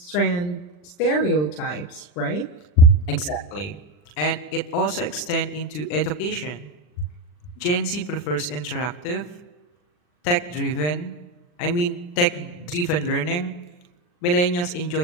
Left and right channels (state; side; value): late; right; 40 ms